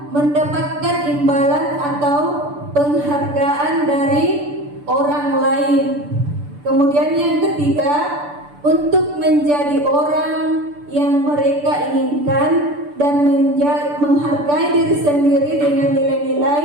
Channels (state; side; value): late; left; 6.9 ms